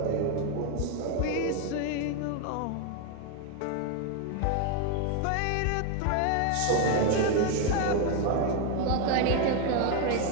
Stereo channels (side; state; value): both; different; correlation 0.01